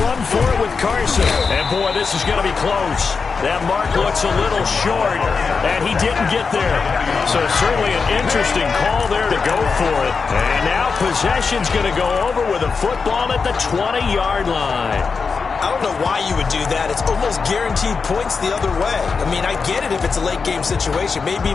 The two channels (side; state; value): right; quieter; 5.1 dB